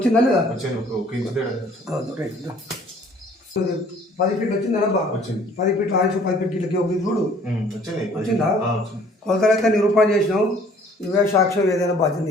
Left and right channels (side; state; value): both; normal; correlation 0.56